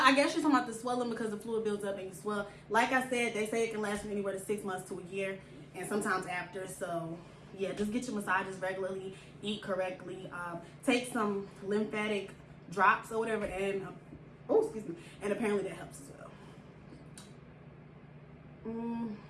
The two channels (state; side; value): identical; both; correlation 1.00